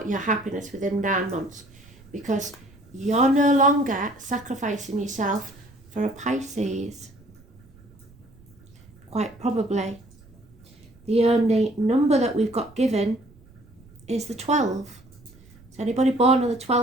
your happiness within 9 months, because you're no longer sacrificing yourself for a Pisces. Quite probably. The only number that we've got given is the 12. So anybody born on the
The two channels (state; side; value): noise; right; rumble, 25 dB below the sound